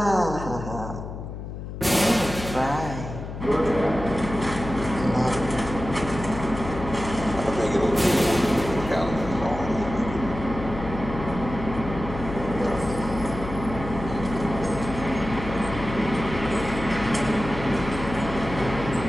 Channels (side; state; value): left; noise; hum, 8 dB below the sound